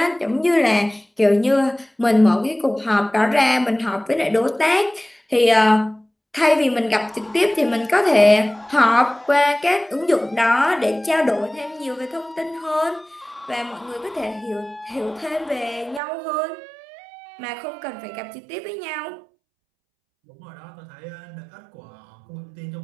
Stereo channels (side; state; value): left; drops out; at 16.0 s